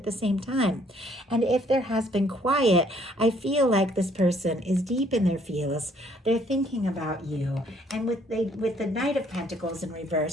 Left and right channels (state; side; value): normal; both; correlation 0.64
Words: the same time. And if there has been quiet, I feel like this person is deep in their feels. They're thinking about you. And with the Knight of Pentacles in